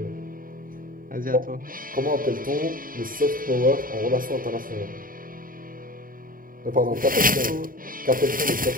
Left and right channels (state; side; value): late; left; 0.41 ms